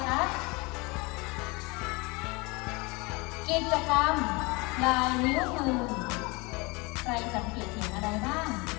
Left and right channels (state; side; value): quieter; right; 26.4 dB